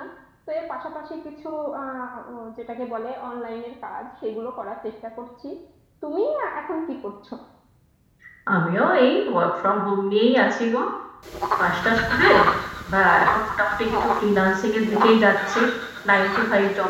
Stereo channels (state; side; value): identical; both; correlation 1.00